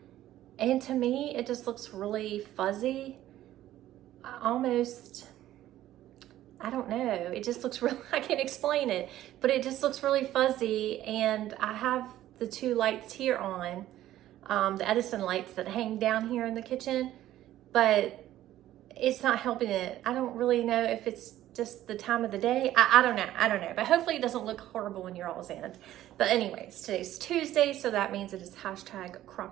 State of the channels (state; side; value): quieter; left; 13.6 dB